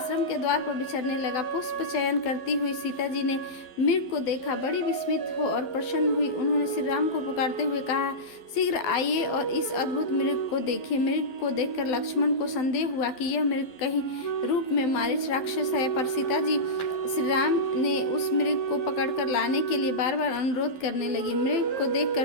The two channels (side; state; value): right; late; 12 ms